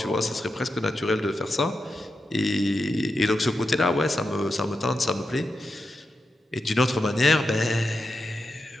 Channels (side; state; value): both; normal; correlation 0.88